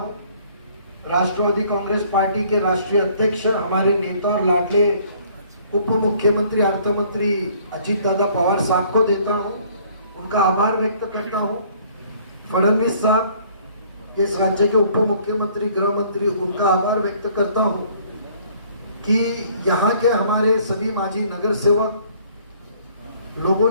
राष्ट्रवादी कांग्रेस पार्टी के राष्ट्रीय अध्यक्ष, हमारे नेता और लाडले उप मुख्यमंत्री अर्थ मंत्री अजीत दादा पवार साहब को देता हूं, उनका आभार व्यक्त करता हूं। फडणवीस साहब, इस राज्य के उप मुख्यमंत्री, गृह मंत्री, उनका आभार व्यक्त करता हूं कि यहाँ के हमारे सभी माजी नगर सेवक लोगों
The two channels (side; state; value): both; inverted; correlation -0.58